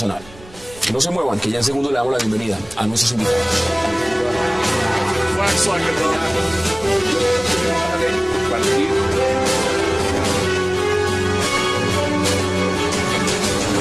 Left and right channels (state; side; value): noise; right; rumble, 21 dB below the sound